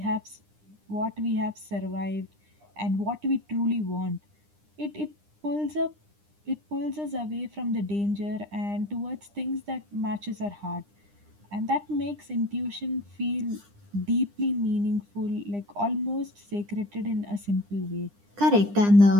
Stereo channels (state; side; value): late; left; 9.9 ms